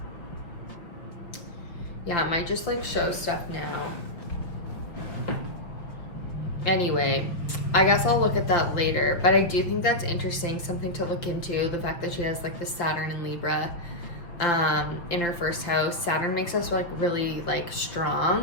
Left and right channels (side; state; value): right; late; 5.5 ms